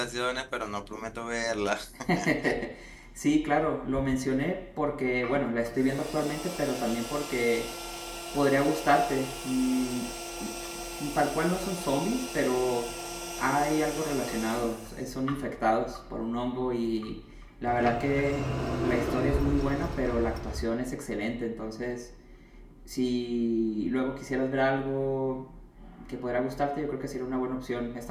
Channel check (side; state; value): both; identical; correlation 1.00